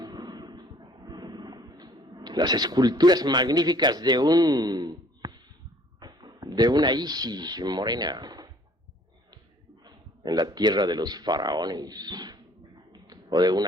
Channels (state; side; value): normal; both; correlation 0.57